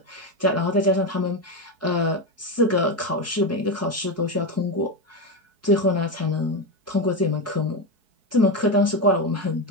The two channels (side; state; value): left; late; 4.6 ms